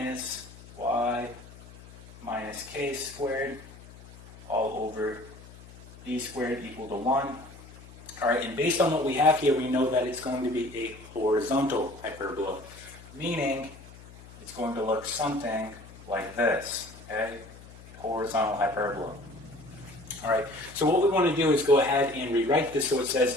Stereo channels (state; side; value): noise; left; hum, 19 dB below the sound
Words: y minus k squared all over b squared equal to 1. All right, and based on what we have here, we know that it's going to be a horizontal hyperbola, meaning it's going to look something like this, okay? Horizontal hyperbola. All right, so what we want to do is go ahead and rewrite this so it says